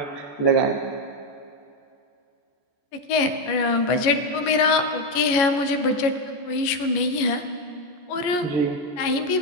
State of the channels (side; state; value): right; late; 14 ms